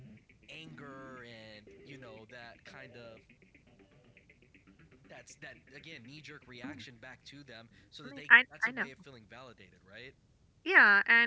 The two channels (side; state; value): both; identical; correlation 1.00